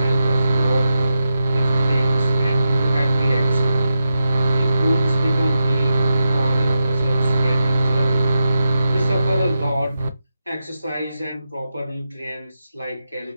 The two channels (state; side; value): inverted; both; correlation -0.89